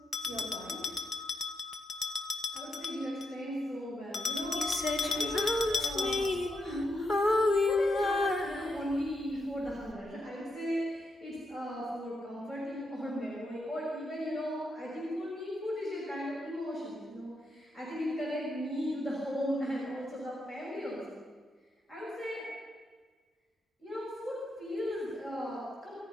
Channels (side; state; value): both; normal; correlation 0.82